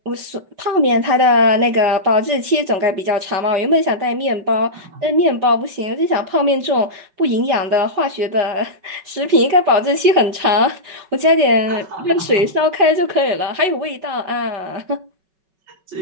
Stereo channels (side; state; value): left; late; 5.3 ms